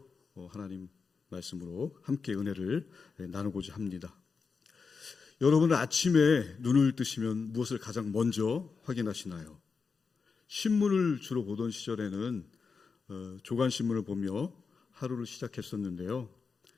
하나님 말씀으로 함께 은혜를 나누고자 합니다. 여러분은 아침에 눈을 뜨시면 무엇을 가장 먼저 확인하시나요? 신문을 주로 보던 시절에는 조간신문을 보며 하루를 시작했었는데요.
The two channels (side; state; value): right; quieter; 5.1 dB